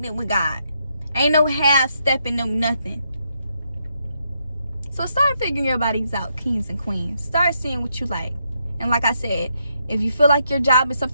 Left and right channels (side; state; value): both; inverted; correlation -0.78